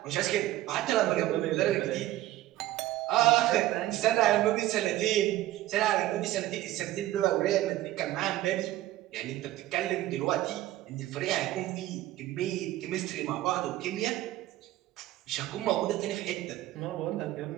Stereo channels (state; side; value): quieter; left; 15.1 dB